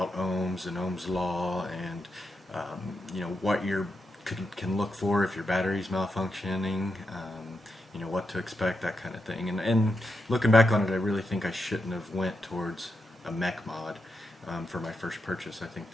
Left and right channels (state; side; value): normal; both; correlation 0.86